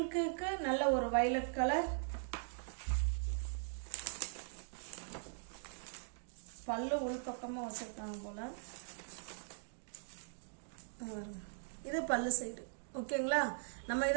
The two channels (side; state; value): left; silent; digital silence